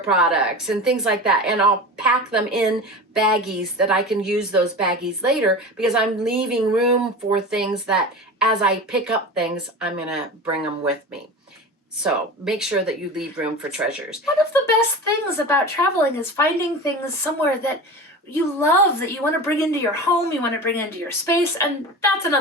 and things like that, and I'll pack them in baggies that I can use those baggies later, because I'm leaving room for things that as I pick up things, I'm gonna bring them with me. So make sure that you leave room for treasures. One of the best things about traveling is finding things somewhere that you love, that you want to bring into your home, you want to bring into your space, and that's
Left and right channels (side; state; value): both; normal; correlation 0.31